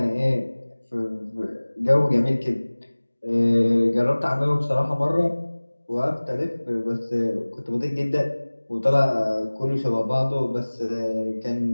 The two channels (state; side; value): inverted; both; correlation -1.00